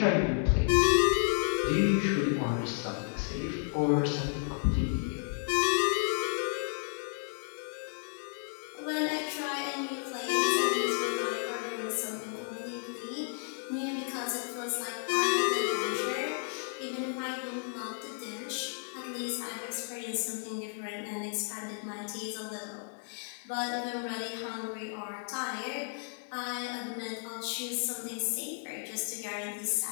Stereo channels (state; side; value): silent; right; 56 dB below the other